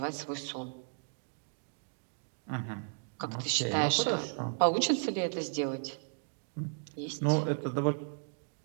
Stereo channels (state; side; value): silent; left; digital silence